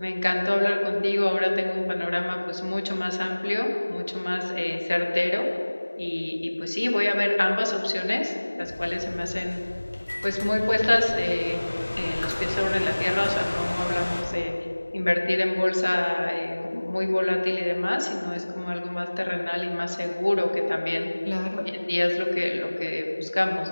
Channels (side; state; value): both; inverted; correlation -1.00